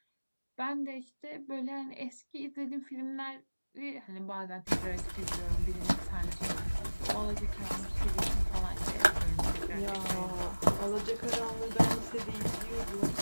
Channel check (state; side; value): inverted; both; correlation -1.00